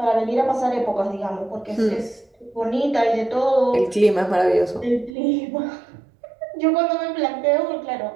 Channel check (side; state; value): left; drops out; at 5.2 s